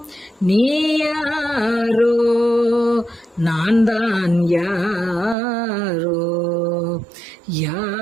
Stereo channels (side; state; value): left; drops out; at 5.4 s